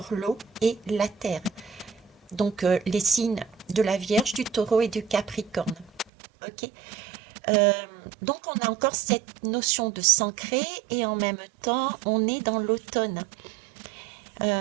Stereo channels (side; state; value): left; drops out; at 6.1 s